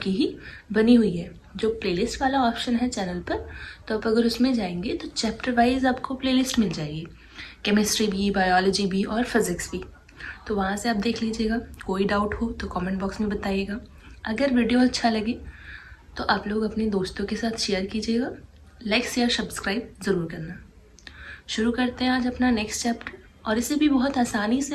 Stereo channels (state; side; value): identical; both; correlation 1.00